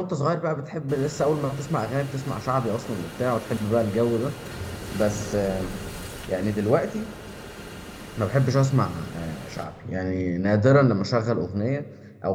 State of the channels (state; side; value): identical; both; correlation 1.00